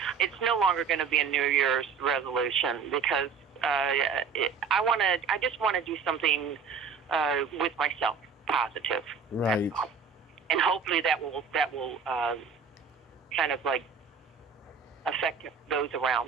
it's no longer going to be a New Year's resolution because I just want to do something with myself, positive. Right. And hopefully that will kind of like affect those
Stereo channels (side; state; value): left; quieter; 5.9 dB